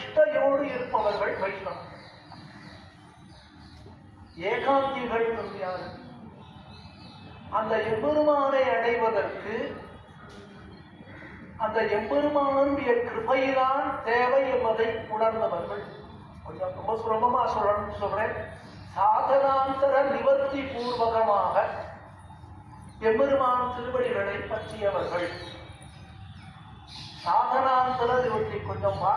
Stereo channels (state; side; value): identical; both; correlation 1.00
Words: இருப்பவர்கள் வைஷ்ணவம். ஏகாந்திகள் யாரு? அந்த எம்பெருமானை அடைவதற்கு அந்த எம்பெருமானுடைய கிருபையில்தான் தேவை என்பதை உணர்ந்தவர்கள். கொஞ்சம் ரொம்ப சுலபமா சொல்றேன். சாதனாந்தர நிவர்த்தி பூர்வகமாக எம்பெருமான் திருவடிகளை பற்றியவர்கள். சாதனாந்தர நிவர்த்தி கொஞ்சம்